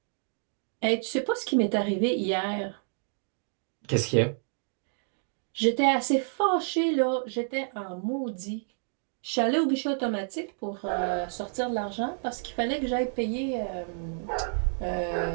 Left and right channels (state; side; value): silent; left; digital silence